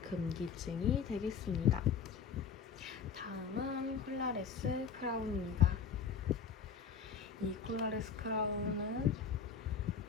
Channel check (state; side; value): quieter; right; 6.4 dB